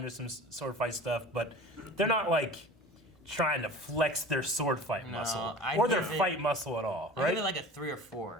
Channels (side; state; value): both; normal; correlation 0.39